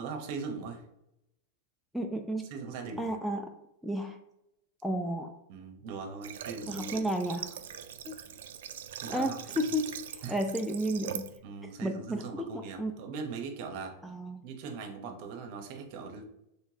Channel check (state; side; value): normal; both; correlation 0.49